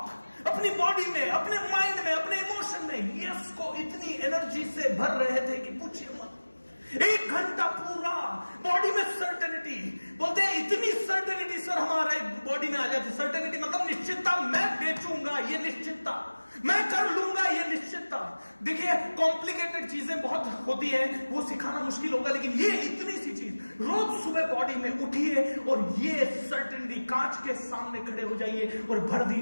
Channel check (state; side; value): inverted; both; correlation -1.00